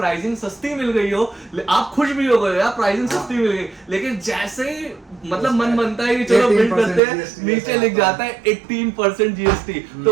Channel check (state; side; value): drops out; left; at 7.0 s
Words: सस्ती मिल गई हो, आप खुश भी हो गए यार प्राइसिंग सस्ती मिल गई, लेकिन जैसे ही मतलब मन बनता है कि चलो बिल्ड करते हैं, नीचे लिख जाता है 18% जीएसटी। तो